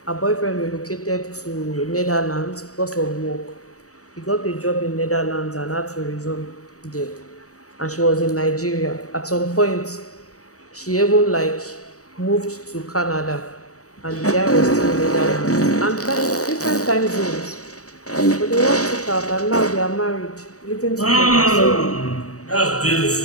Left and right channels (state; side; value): late; right; 0.66 ms